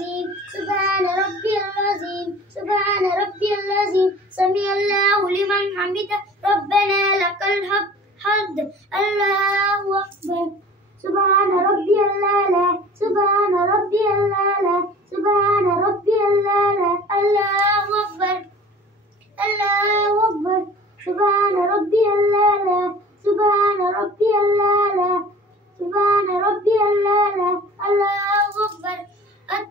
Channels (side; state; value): both; normal; correlation 0.44